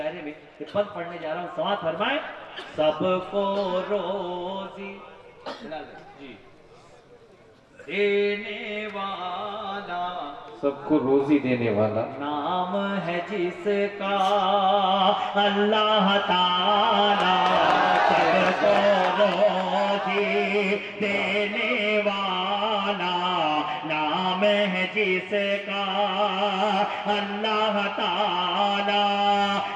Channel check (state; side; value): identical; both; correlation 1.00